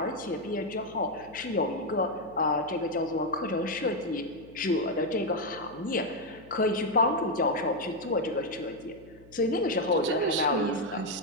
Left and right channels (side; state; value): left; noise; hum, 23 dB below the sound